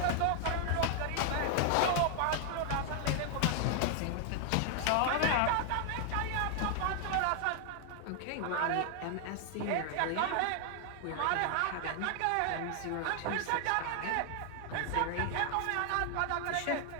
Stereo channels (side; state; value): both; different; correlation 0.00